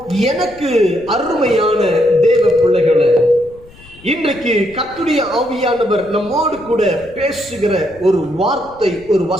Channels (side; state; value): left; noise; rumble, 23 dB below the sound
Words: எனக்கு அருமையான தேவ பிள்ளைகளே, இன்றைக்கு கர்த்தருடைய ஆவியானவர் நம்மோடு கூட பேசுகிற ஒரு வார்த்தை, ஒரு